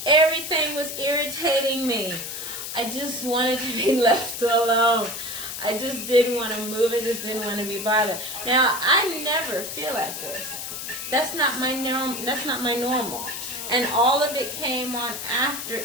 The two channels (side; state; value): left; noise; hiss, 7 dB below the sound